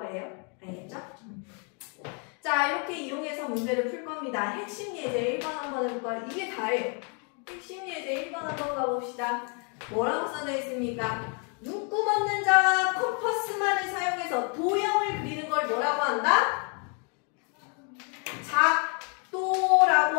알겠죠? 자, 이렇게 이용해서 문제를 풀 겁니다. 핵심 예제 1번 한번 해볼까요? 이게 다예요. 핵심 예제 1번 한번 가봅시다. 뭐라고 써져 있습니까? 눈금 없는 자와 컴퍼스만을 사용해서 도형을 그리는 걸 뭐라고 한다?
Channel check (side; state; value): right; quieter; 37.6 dB